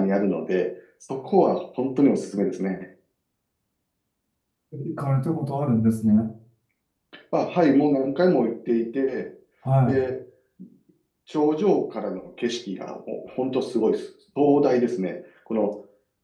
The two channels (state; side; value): identical; both; correlation 1.00